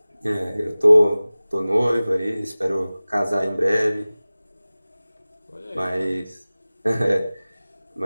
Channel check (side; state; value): both; inverted; correlation -0.98